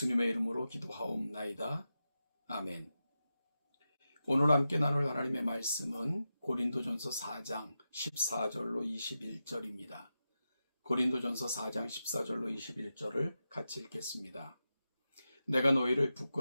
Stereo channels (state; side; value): inverted; both; correlation -0.91